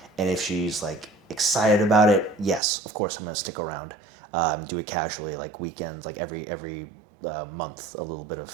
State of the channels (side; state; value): left; drops out; at 2.6 s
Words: and if she's like excited about it, yes, of course I'm gonna stick around, do it casually, like weekends, like every month, a little bit